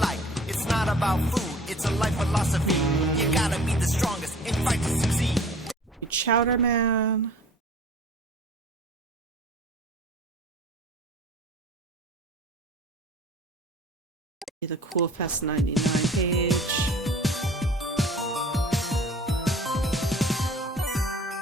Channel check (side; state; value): both; normal; correlation 0.47